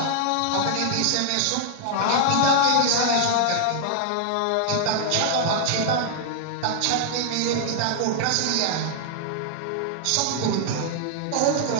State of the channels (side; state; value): both; different; correlation -0.01